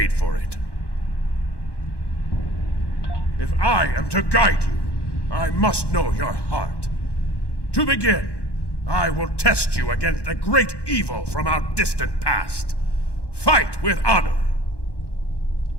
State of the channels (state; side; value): late; right; 1.1 ms